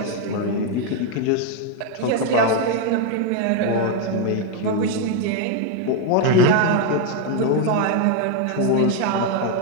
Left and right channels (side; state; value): both; different; correlation 0.01